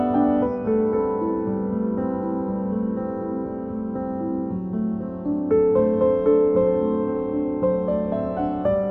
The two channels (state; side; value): identical; both; correlation 1.00